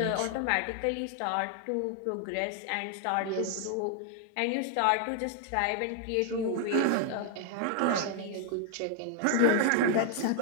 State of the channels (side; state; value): both; different; correlation 0.00